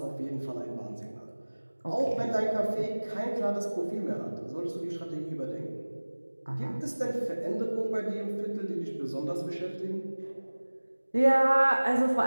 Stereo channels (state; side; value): inverted; both; correlation -1.00